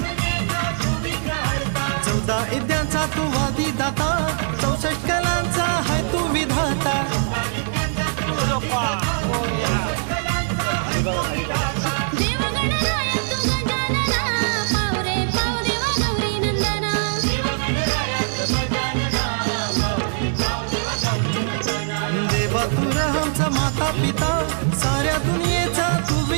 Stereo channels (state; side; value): silent; left; 64 dB below the other